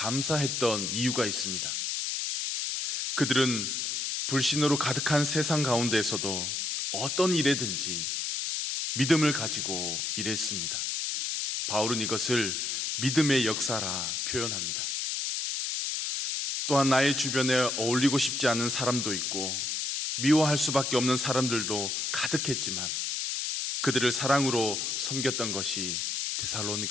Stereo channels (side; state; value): left; noise; hiss, 1 dB below the sound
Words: 이유가 있습니다. 그들은 불신으로 가득한 세상 가운데에서도 어떤 일에든지 믿음을 가지고 일했습니다. 바울은 이것을 믿음의 역사라 표현합니다. 또한 나의 주변에 어울리고 싶지 않은 사람도 있고 미워할 수밖에 없는 사람들도 가득했지만 그들을 사랑으로 섬겼던 것이